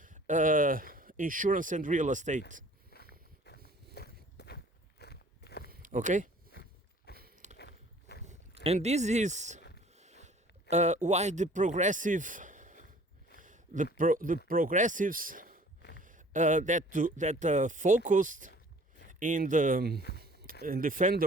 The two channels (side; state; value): both; normal; correlation 0.52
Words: insurance and real estate. Okay? And this is why the progressives that focused in defend